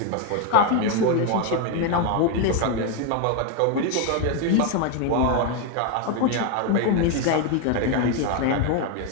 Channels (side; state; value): both; different; correlation 0.01